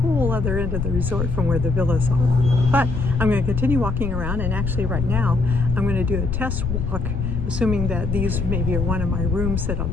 other end of the resort from where the villas are. But I'm going to continue walking around, and actually right now I'm going to do a test walk, assuming that these maybe are one of my rooms that I'll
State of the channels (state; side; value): noise; left; rumble, 3 dB below the sound